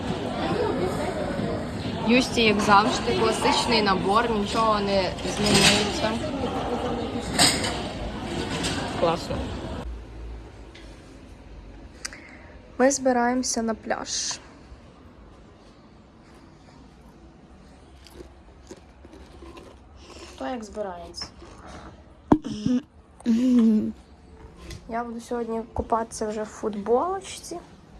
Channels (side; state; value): both; identical; correlation 1.00